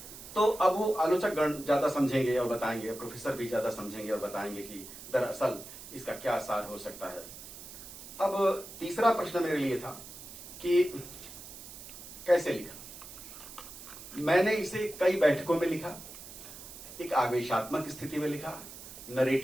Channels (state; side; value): noise; right; hiss, 14 dB below the sound